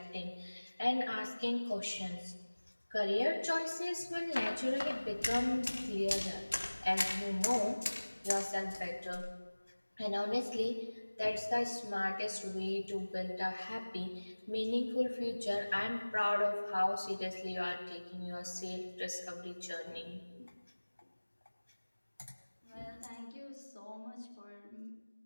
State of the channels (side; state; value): both; inverted; correlation -1.00